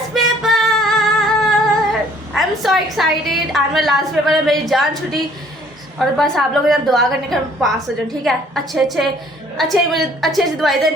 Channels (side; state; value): both; normal; correlation 0.58